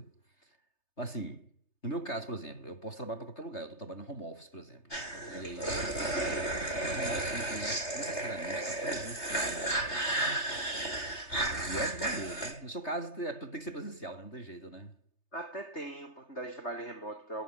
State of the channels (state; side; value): late; right; 3.3 ms